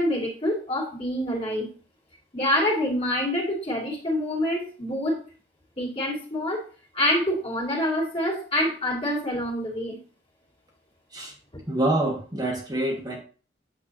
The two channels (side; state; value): both; normal; correlation 0.40